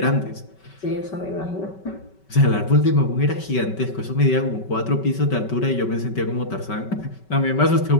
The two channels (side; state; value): right; late; 5.3 ms